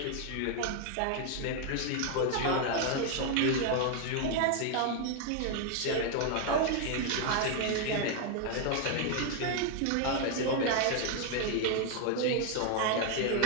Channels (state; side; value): different; both; correlation 0.00